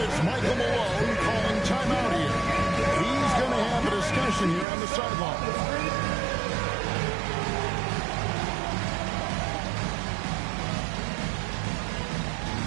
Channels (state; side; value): drops out; left; at 4.7 s